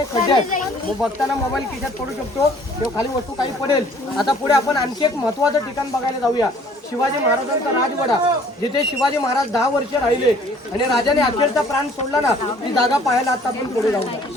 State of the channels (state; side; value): normal; both; correlation 0.56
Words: खड्डे आहेत. मग बघताना मोबाईल खिशात पडू शकतो किंवा खाली वस्तू काही पडेल. आता पुढे आपण आणखी एक महत्वाचं ठिकाण बघायला जाऊया, शिवाजी महाराजांचा राजवाडा, जिथे शिवाजी महाराज 10 वर्ष राहिले आणि राजाने अखेरचा प्राण सोडला ना, ती जागा पाहायला आता आपण पुढे